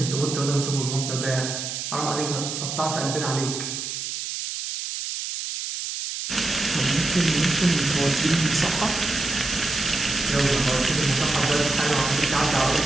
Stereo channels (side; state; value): right; noise; hiss, 5 dB below the sound